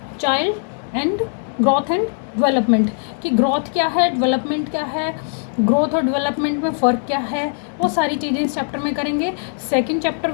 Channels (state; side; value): silent; right; digital silence